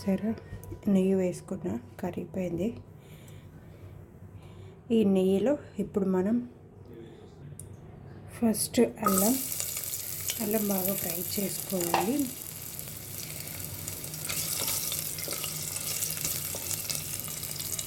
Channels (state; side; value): identical; both; correlation 1.00